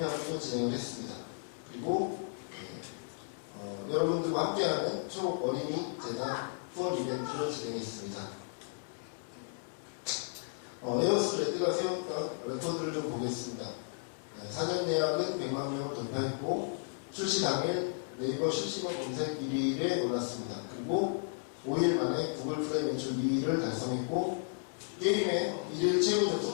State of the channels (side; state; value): right; silent; digital silence